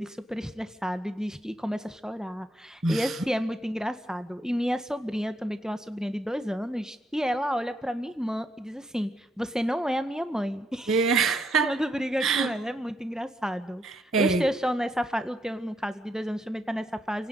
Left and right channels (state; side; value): normal; both; correlation 0.76